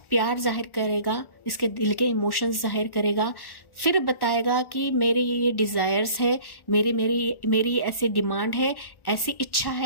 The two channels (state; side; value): late; right; 1.1 ms